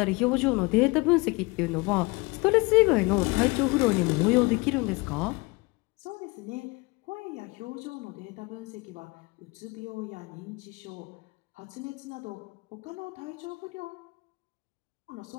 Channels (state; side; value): quieter; right; 25.6 dB